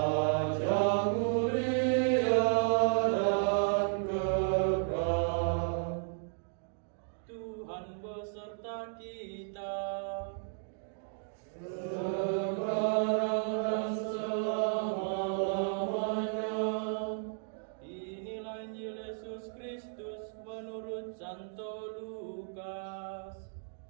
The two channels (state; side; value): silent; left; digital silence